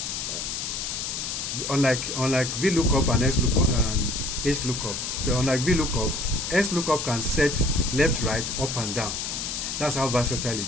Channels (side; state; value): left; noise; hiss, 4 dB below the sound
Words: Unlike VLOOKUP and XLOOKUP and HLOOKUP. So unlike VLOOKUP, XLOOKUP can set left, right, up and down. That's how versatile